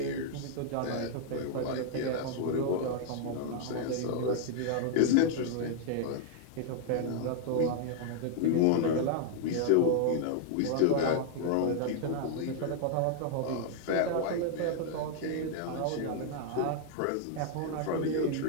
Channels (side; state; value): both; different; correlation -0.01